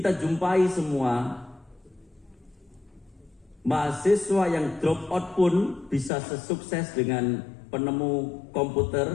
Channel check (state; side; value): drops out; right; at 6.1 s